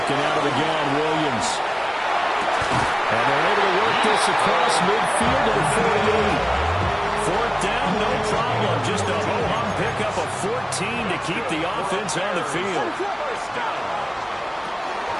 out of the gun, Williams. And they're able to work this across midfield to the 48. Fourth down, no problem. Just a ho-hum pickup of 14 to keep the offense on the field.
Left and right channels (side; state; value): both; identical; correlation 1.00